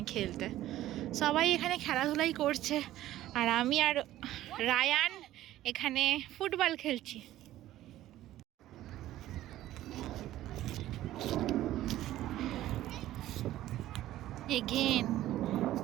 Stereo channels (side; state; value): left; quieter; 14.3 dB